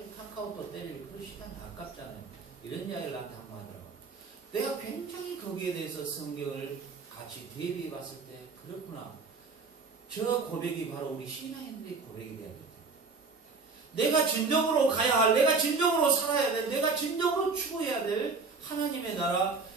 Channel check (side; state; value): left; quieter; 4.5 dB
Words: 카카오톡 때릴 그 시간이 아깝잖아요. 이런 이야기를 나한테 한번 하더라고요. 내가 굉장히 거기에 대해서 성경을 같이 대비해 봤을 때 그렇구나. 저 고백이 바로 우리 신앙인들의 고백이 돼야 됩니다. 내가 진정으로 가야 할, 내가 진정으로 살아야 될, 내가 진정으로 추구해야 될 하나님의 나라,